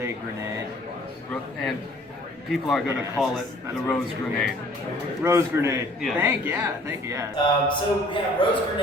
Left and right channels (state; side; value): normal; both; correlation 0.55